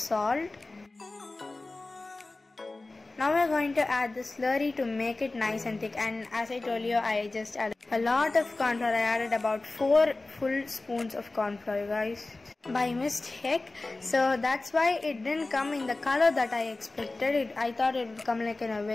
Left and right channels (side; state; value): right; quieter; 3.2 dB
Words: Now we are going to add the slurry to make it nice and thick, and as I told you, I just added a lot of corn flour. I added about 4 full spoons of corn flour, guys, by mistake. So that's why it didn't come in the color that I expected. I thought it would come like in a